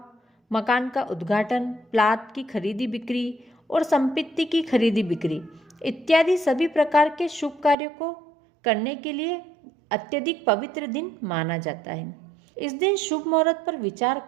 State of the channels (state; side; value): drops out; left; at 7.8 s